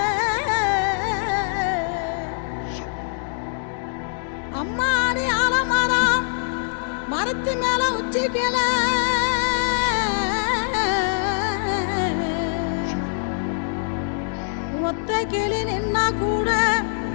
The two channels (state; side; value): silent; right; digital silence